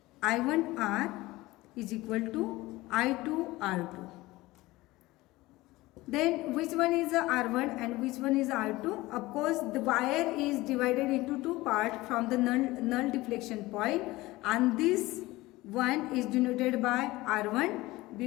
I1R is equal to I2R2. Then which one is the R1 and which one is R2? Of course, the wire is divided into two parts from the null deflection point, and this one is denoted by R1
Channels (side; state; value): right; quieter; 19.4 dB